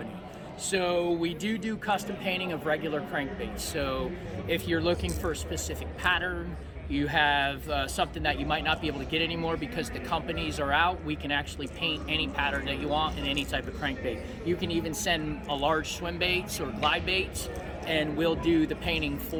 So we do custom painting of regular crankbaits. So if you're looking for a specific pattern, you have something that you might not be able to get anymore because the companies are out, we can actually paint any pattern that you want in any type of crankbait. You can even send a large swim baits or glide baits, and we'll do the painting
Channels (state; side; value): identical; both; correlation 1.00